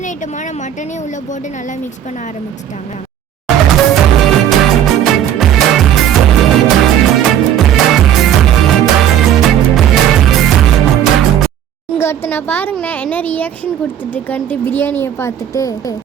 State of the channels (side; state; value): left; quieter; 10.2 dB